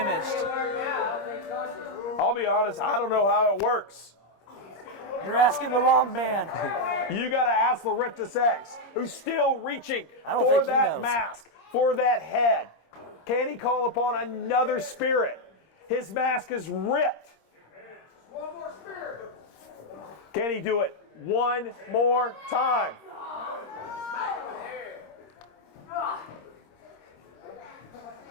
I'll be honest, I don't know how it works. You're asking the wrong man. You got to ask Laurentis X, who's still reaching don't for think he that knows. mask, for that head. Can he call upon another spirit? His mask is ripped. One more spirit. Can he do it one more time?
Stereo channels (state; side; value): late; right; 26 ms